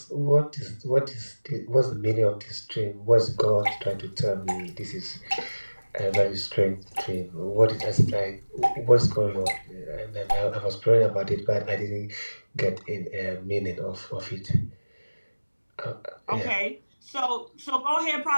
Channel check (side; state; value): both; inverted; correlation -1.00